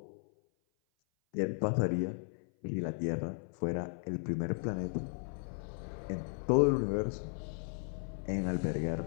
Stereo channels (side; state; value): right; silent; 54 dB below the other